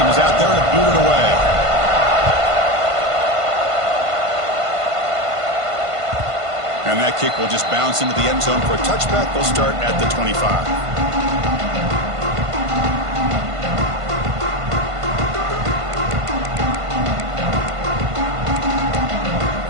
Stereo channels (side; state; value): left; late; 1.5 ms